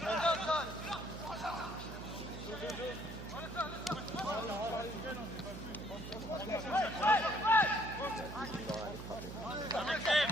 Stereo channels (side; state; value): right; noise; hum, 10 dB below the sound